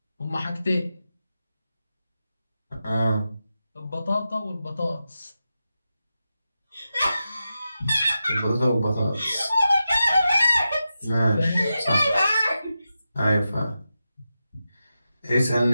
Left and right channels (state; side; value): inverted; both; correlation -0.90